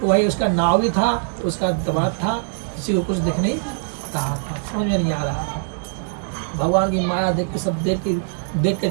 तो वही उसका नाव भी था, उसका दबाव था, किसी को कुछ दिख नहीं रहा था, समझ में नहीं आ रहा था। भगवान की माया देख के सब देख के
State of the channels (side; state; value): left; silent; digital silence